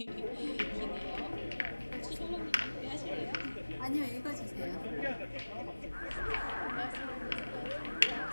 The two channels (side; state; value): both; inverted; correlation -1.00